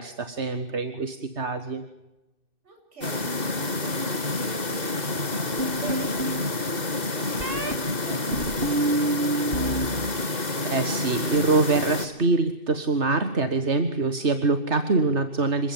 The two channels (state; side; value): late; left; 2.0 ms